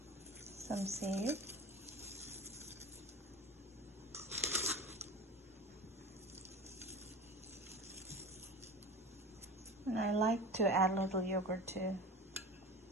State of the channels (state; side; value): normal; both; correlation 0.33